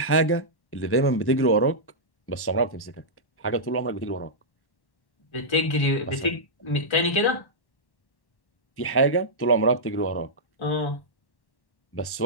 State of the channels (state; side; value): late; right; 1.1 ms